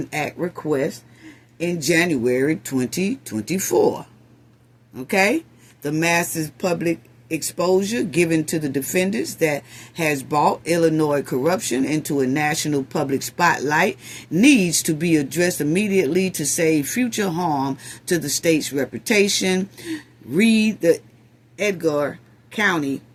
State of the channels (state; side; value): identical; both; correlation 1.00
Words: Act requests in January 2024. Okay? The massive public exposure given to the defendants that has brought Illinois corruption into a national public spotlight needs to be addressed immediately to save future harm to the state's reputation. Read the Edgar County